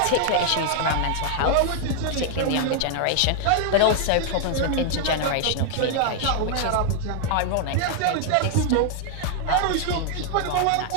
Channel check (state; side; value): different; both; correlation 0.00